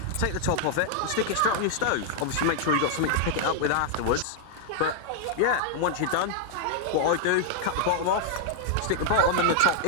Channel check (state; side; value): different; both; correlation 0.00